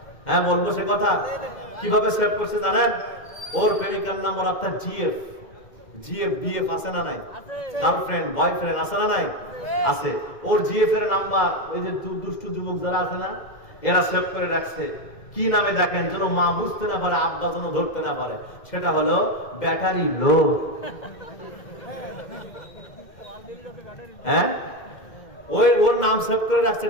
হ্যাঁ বলবো সে কথা। কিভাবে সেভ করছে জানেন? ওর প্রেমিকার নাম্বার অর্থাৎ জিএফ, বিএফ আছে না নাই? গার্লফ্রেন্ড বয়ফ্রেন্ড আছে না নাই? আছে। ওর জিএফ এর নাম্বার ওই যে দুষ্ট যুবক যারা আছে না, এরা সেভ করে রাখছে। কি নামে দেখেন, যেন মা বুঝতে না পারে, আব্বা যেন ধরতে না পারে। সেটা হলো ব্যাটারি লো। হ্যাঁ, ওর নাম সেভ করে রাখছে,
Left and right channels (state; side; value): late; right; 2.1 ms